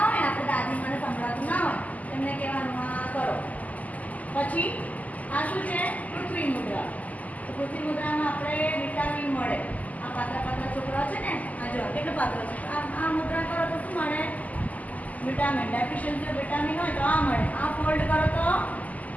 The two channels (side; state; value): right; late; 0.076 ms